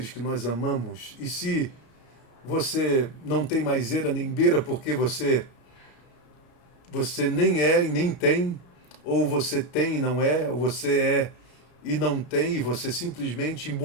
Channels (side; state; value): right; late; 33 ms